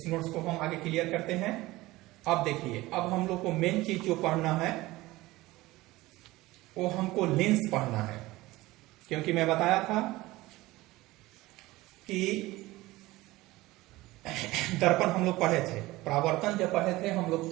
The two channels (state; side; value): quieter; left; 19.0 dB